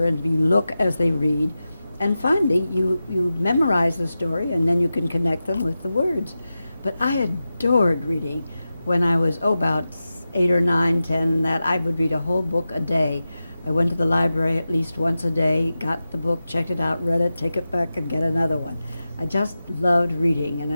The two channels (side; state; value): both; inverted; correlation -0.93